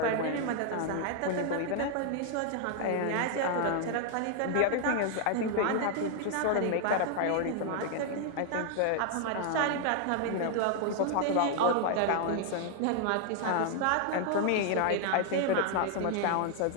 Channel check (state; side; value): different; both; correlation 0.00